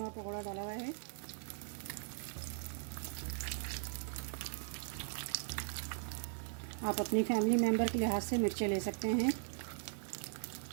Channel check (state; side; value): silent; left; 52 dB below the other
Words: का पकोड़ा डाला हुआ है। आप अपनी फैमिली मेम्बर के लिहाज से मिर्चें ले सकते हैं।